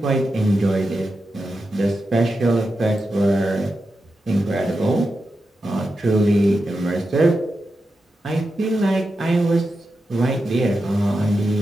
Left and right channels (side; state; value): both; normal; correlation 0.89